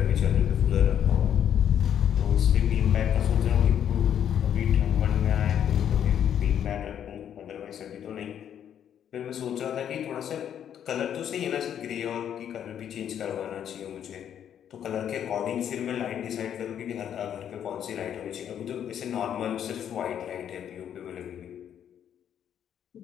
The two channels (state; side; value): quieter; right; 9.4 dB